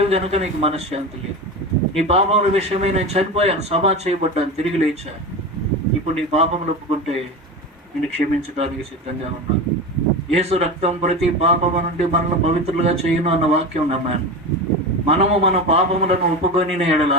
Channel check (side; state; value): both; normal; correlation 0.25